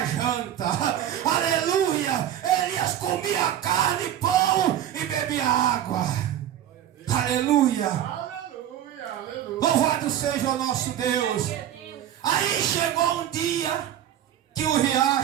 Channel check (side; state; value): left; quieter; 11.1 dB